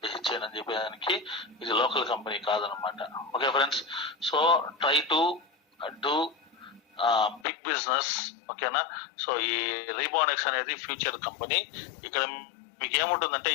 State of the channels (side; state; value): right; drops out; at 7.5 s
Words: అని చెప్పేదానికి ఇది లోకల్ కంపెనీ కాదనమాట. Okay friends, so try to do big business. ఓకేనా, సో ఈ రీబానెక్స్ అనేది ఫ్యూచర్ కంపెనీ. ఇక్కడ మీకు ఏముంటుందంటే